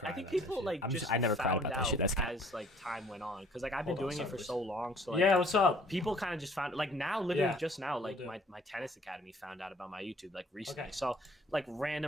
I think people like I never cried about that shit. That's as like time went on, because like I've been doing it for so long. So like, yeah, what's up? People kind of just found like now, literally just now, like my tennis academy found out about my YouTube like recently. So like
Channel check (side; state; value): both; normal; correlation 0.56